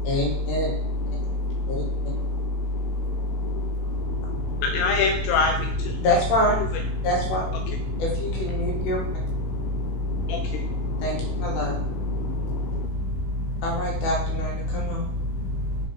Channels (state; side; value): late; right; 16 ms